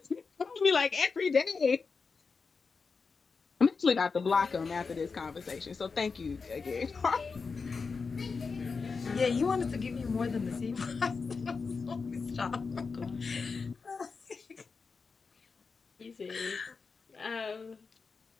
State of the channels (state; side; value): quieter; right; 4.8 dB